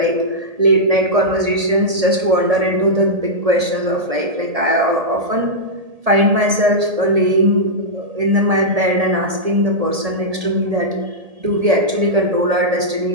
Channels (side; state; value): left; late; 1.7 ms